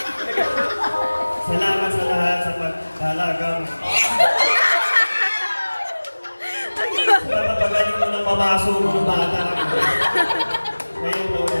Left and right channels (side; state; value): both; inverted; correlation -1.00